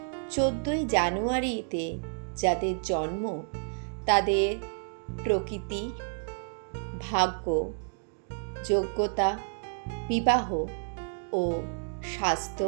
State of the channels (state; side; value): silent; left; digital silence